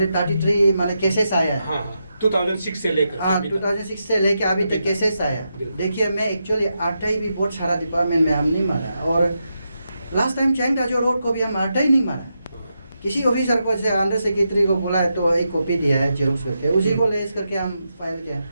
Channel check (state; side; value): inverted; both; correlation -0.85